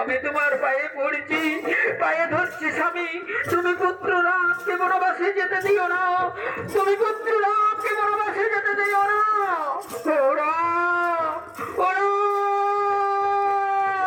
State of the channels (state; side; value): identical; both; correlation 1.00